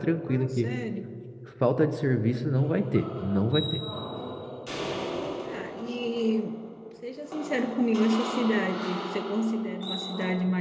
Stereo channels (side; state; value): both; identical; correlation 1.00